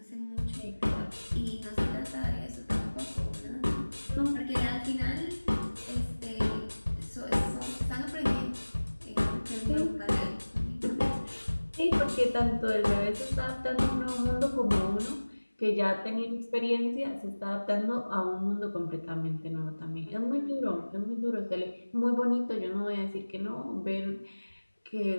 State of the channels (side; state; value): both; inverted; correlation -1.00